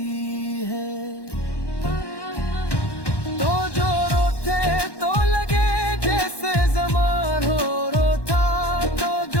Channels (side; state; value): right; late; 1.1 ms